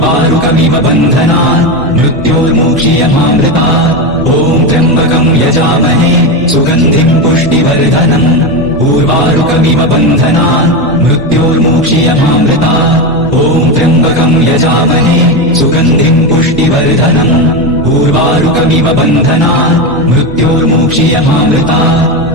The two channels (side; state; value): both; normal; correlation 0.15